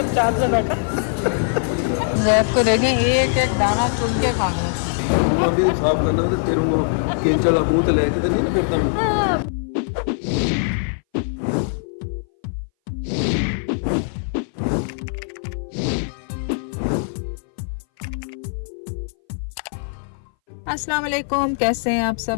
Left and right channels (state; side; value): silent; right; 60 dB below the other